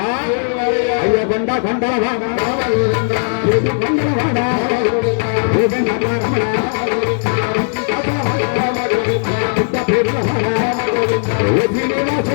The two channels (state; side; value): silent; right; digital silence